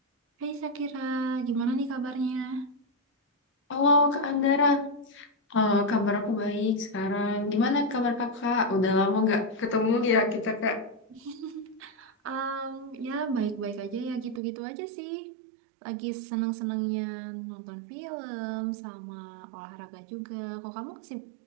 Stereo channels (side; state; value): left; drops out; at 14.4 s